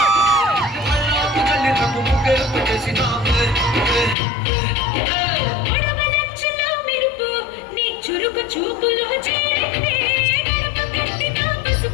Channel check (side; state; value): right; drops out; at 4.2 s